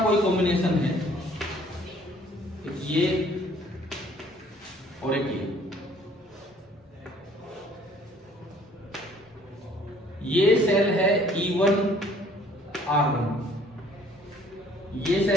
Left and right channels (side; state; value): both; normal; correlation 0.58